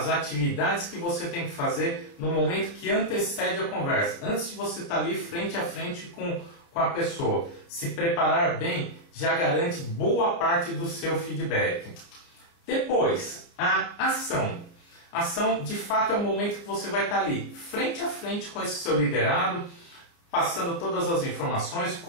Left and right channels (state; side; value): late; right; 30 ms